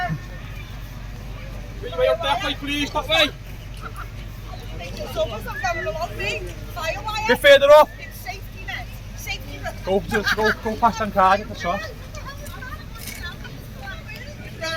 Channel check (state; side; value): identical; both; correlation 1.00